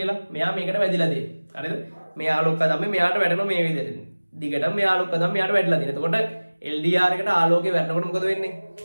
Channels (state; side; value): inverted; both; correlation -1.00